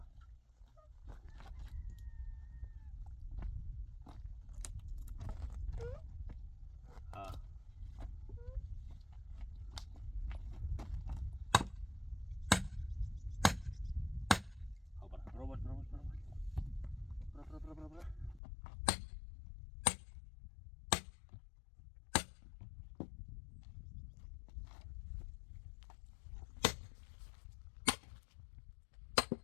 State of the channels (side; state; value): right; drops out; at 18.4 s